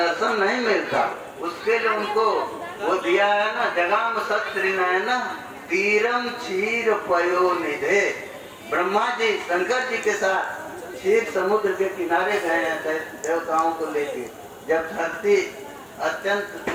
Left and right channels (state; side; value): identical; both; correlation 1.00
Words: नहीं मिलता, उसके लिए उनको वो दिया है ना, जगाम सत्रि नयना तीरम क्षीर पयो निधे। ब्रह्मा जी शंकर जी के साथ क्षीर समुद्र के किनारे गए हैं देवताओं को लेके। जब धरती अत्यंत